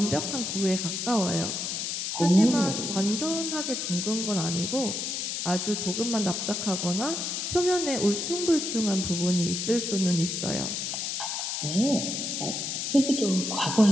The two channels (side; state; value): left; noise; hiss, 2 dB below the sound